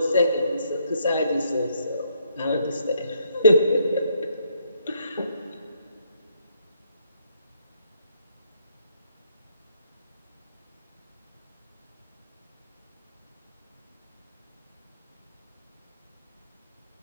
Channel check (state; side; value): inverted; both; correlation -0.72